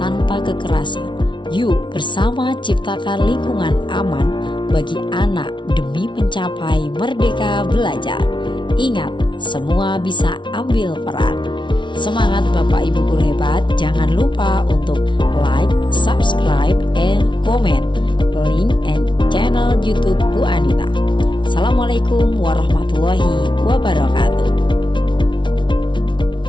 tanpa kekerasan. Yuk bersama ciptakan lingkungan aman bagi anak demi mencapai merdeka belajar. Ingat, semua bisa ambil peran. Semangat Bapak Ibu guru hebat. Jangan lupa untuk like, subscribe, and comment link and channel YouTube Bu Anita. Assalamualaikum warahmatullahi wabarakatuh.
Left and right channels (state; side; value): late; right; 0.24 ms